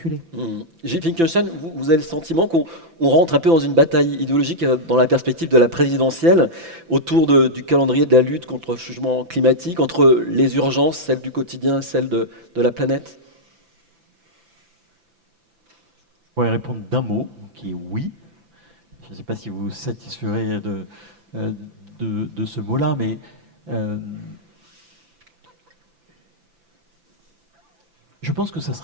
Gilles Finkelstein, vous avez le sentiment qu'on rentre un peu dans une bataille idéologique dans la perspective de la présidentielle, autour du calendrier de la lutte contre le changement climatique, entre les urgences, celles du quotidien, celles de la planète ? pourrais répondre d'un mot, qui est oui. Je ne sais pas si vous vous satisferez de ce mot-là, mais je pense que ça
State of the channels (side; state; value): left; late; 5.9 ms